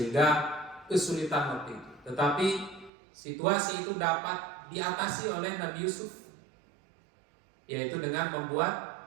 kesulitan waktu itu. Tetapi situasi itu dapat diatasi oleh Nabi Yusuf, yaitu dengan membuat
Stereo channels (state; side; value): drops out; left; at 2.9 s